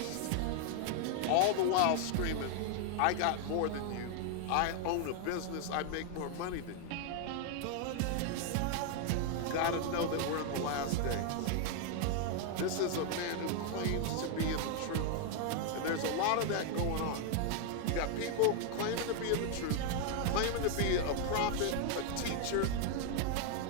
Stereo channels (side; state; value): both; different; correlation 0.00